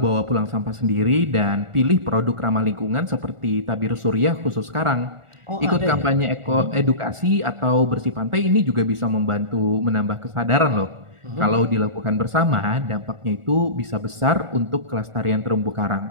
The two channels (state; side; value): late; left; 1.4 ms